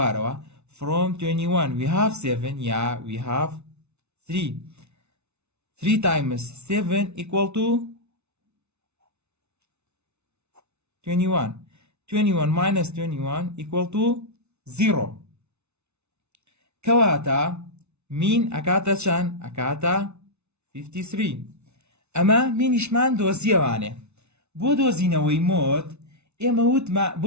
from 21 we have 7 yeah we have 3 3 times 7 equal to 21 21 minus 21 equal to 0 کەواتە مین ئەکاتە چەند ئەکاتە 53 ئەمە مینیشمان دۆزیەوانێ بۆ دۆزینەوەی مۆد ئێمە وتمە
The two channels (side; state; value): left; late; 0.81 ms